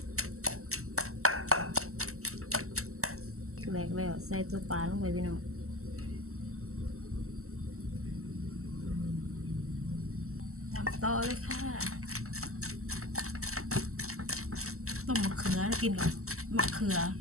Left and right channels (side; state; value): left; late; 0.63 ms